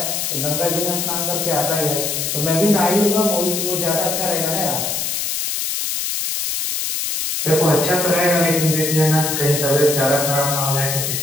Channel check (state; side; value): noise; left; hiss, 1 dB below the sound